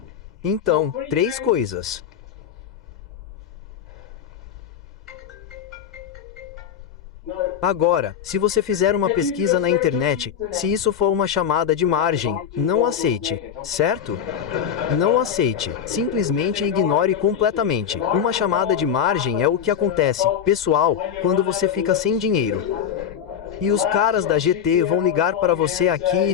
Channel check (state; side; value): quieter; right; 8.5 dB